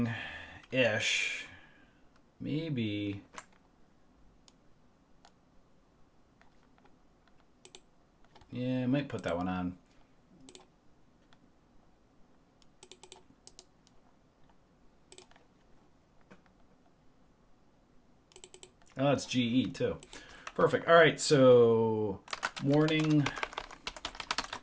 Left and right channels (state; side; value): identical; both; correlation 1.00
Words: ish. Maybe. Yeah, I might put that one on. Oh, it's GE too. Perfect. All right, so Morning